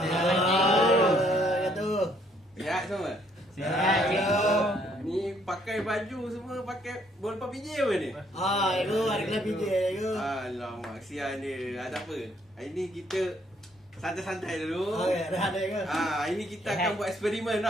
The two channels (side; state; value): both; normal; correlation 0.67